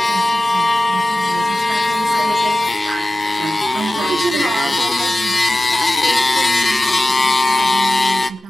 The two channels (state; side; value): normal; both; correlation 0.95